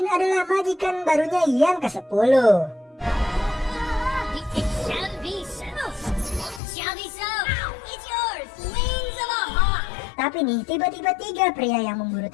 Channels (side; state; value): right; drops out; at 6.6 s